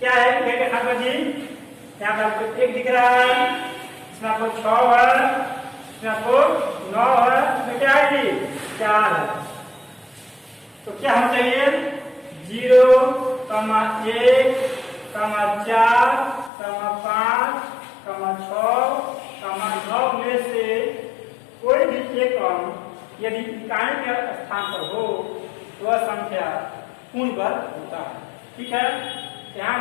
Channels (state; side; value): drops out; right; at 16.5 s